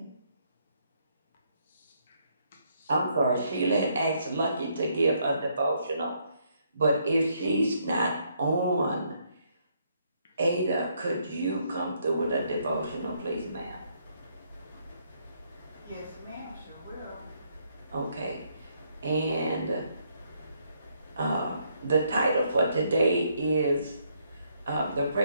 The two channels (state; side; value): inverted; both; correlation -0.72